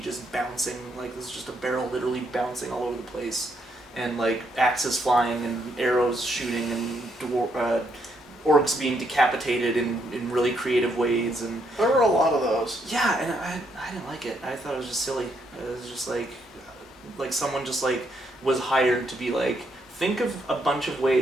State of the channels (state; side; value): normal; both; correlation 0.75